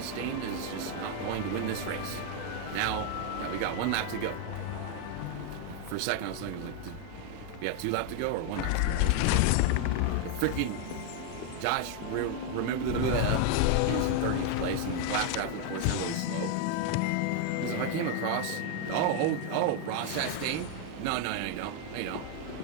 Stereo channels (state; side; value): different; both; correlation 0.01